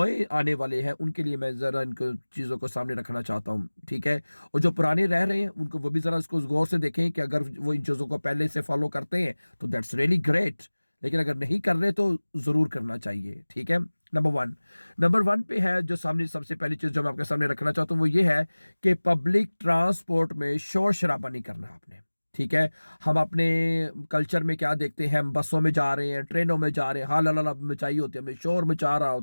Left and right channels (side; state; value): both; inverted; correlation -1.00